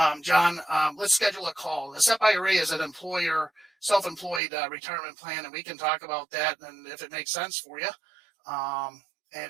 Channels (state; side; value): drops out; left; at 4.4 s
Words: John, let's schedule a call. The SEP IRA is an employer, self-employed retirement plan, and we can talk about that and if it makes sense for you,